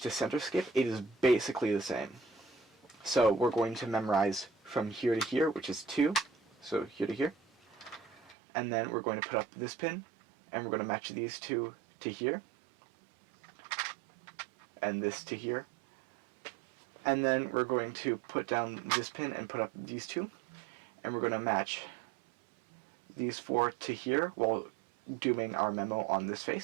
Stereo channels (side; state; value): left; drops out; at 8.3 s